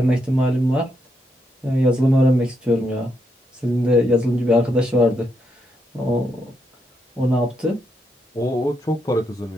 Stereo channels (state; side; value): normal; both; correlation 0.80